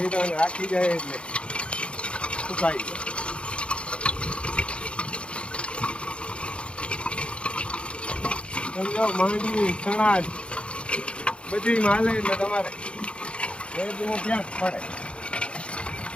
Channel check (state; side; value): late; right; 0.058 ms